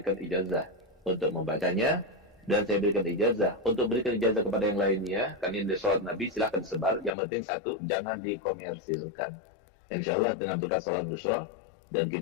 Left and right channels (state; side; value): drops out; right; at 7.2 s